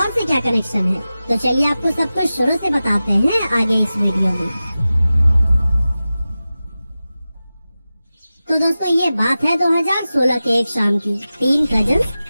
से क्या कनेक्शन है। तो चलिए आपको सब कुछ शुरू से बताते हैं आगे इस वीडियो में। तो दोस्तों, ये बात है 2016 के एक शाम की। 3 कजन्स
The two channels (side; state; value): both; inverted; correlation -0.95